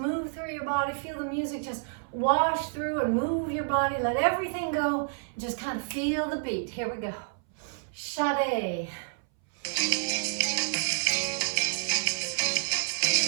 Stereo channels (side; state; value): left; silent; 59 dB below the other